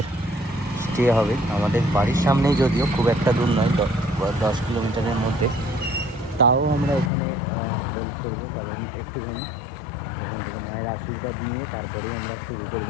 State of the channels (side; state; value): right; drops out; at 7.1 s